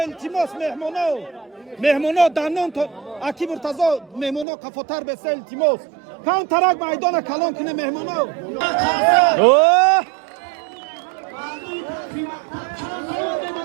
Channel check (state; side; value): drops out; left; at 4.5 s